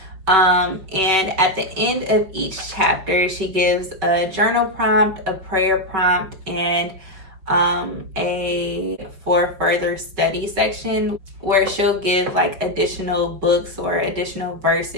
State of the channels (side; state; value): left; late; 5.2 ms